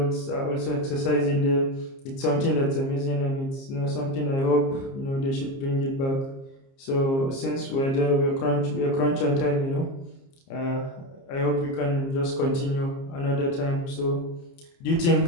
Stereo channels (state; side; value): late; right; 30 ms